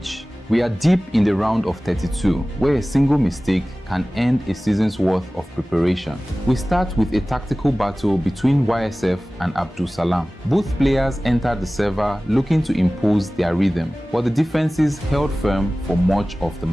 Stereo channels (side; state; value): both; normal; correlation 0.97